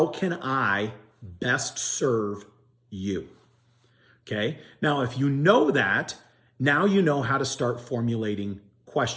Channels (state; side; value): identical; both; correlation 1.00